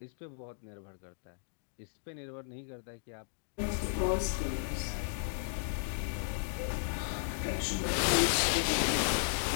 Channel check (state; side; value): silent; right; digital silence